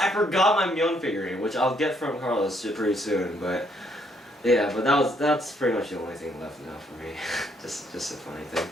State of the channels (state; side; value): normal; both; correlation 0.70